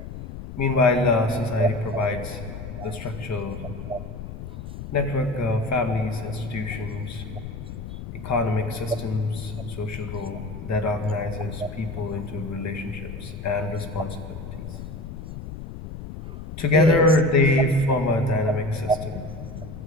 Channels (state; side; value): noise; left; rumble, 10 dB below the sound